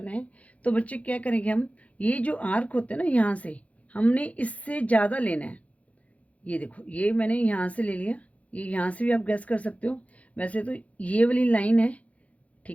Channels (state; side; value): late; right; 0.066 ms